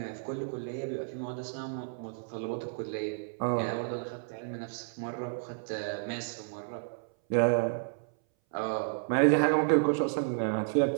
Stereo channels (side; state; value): left; silent; 57 dB below the other